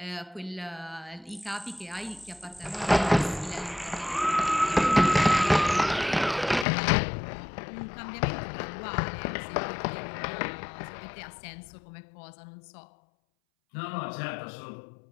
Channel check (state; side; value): drops out; right; at 6.7 s